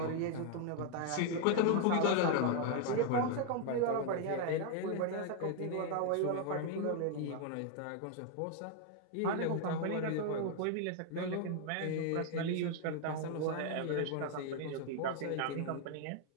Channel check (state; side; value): different; both; correlation 0.00